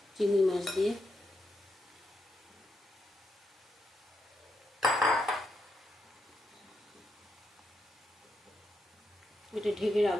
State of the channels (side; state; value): both; normal; correlation 0.82